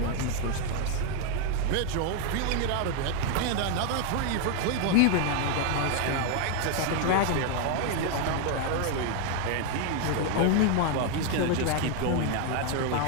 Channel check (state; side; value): different; both; correlation 0.00